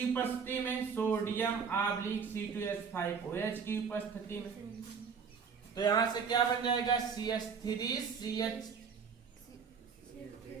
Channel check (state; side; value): quieter; left; 6.1 dB